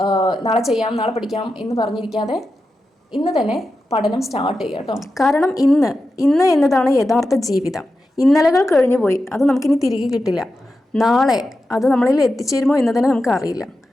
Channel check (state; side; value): normal; both; correlation 0.90